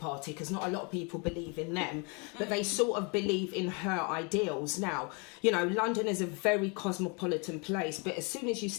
because not a lot of people believe in them, but they sort of believe in her ideals. Now, London is a very cosmopolitan place, but as soon as you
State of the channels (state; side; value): quieter; right; 33.0 dB